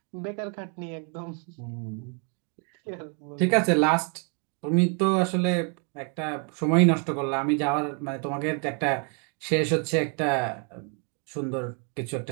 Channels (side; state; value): left; quieter; 38.4 dB